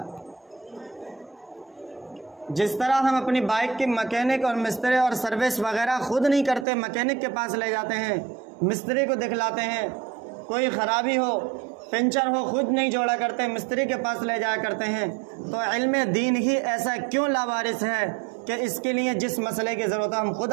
جس طرح ہم اپنی بائک کی مکینک اور مستری اور سروس وغیرہ خود نہیں کرتے، مکینک کے پاس لے جاتے ہیں، مستری کو دکھلاتے ہیں، کوئی خرابی ہو، پنچر ہو، خود نہیں جوڑا کرتے، مستری کے پاس لے جایا کرتے ہیں، تو علم دین ہی ایسا کیوں لاوارث ہے کہ اس کے لیے جس مسئلے کی ضرورت ہے ہم خود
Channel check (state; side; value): drops out; left; at 6.7 s